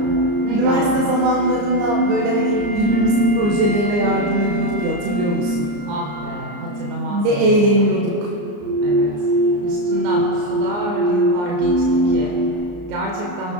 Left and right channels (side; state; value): left; late; 34 ms